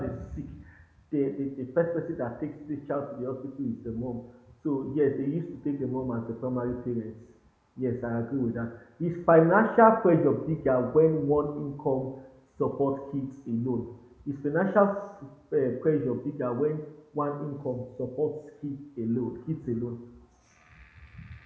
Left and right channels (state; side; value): identical; both; correlation 1.00